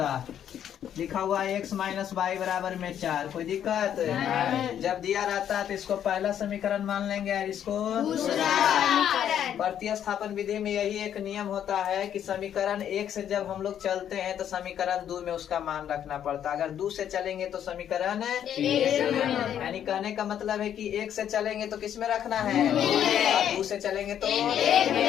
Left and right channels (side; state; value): right; quieter; 9.8 dB